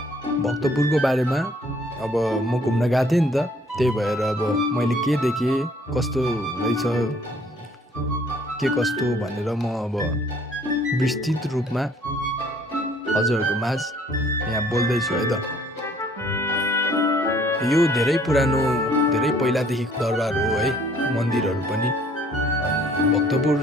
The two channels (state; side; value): normal; both; correlation 0.60